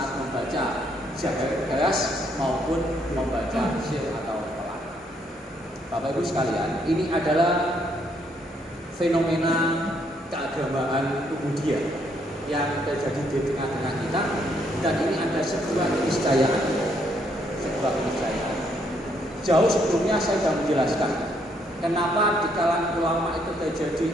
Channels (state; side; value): normal; both; correlation 0.71